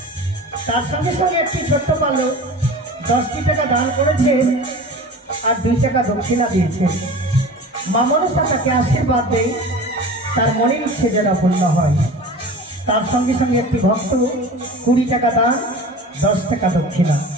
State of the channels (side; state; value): both; normal; correlation 0.37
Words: তার সঙ্গে সঙ্গে একটি ছোট্ট বালক 10টি টাকা দান করেছে আর 2 টাকা দক্ষিণা দিয়েছে। মা মনসা তাকে আশীর্বাদ দেয়, তার মনের ইচ্ছে যেন পূর্ণ হয়। তার সঙ্গে সঙ্গে একটি ভক্ত 20 টাকা দান 10 টাকা দক্ষিণা